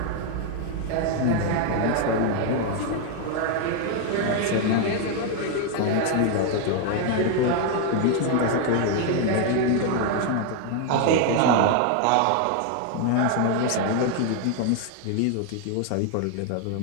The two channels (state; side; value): different; both; correlation 0.01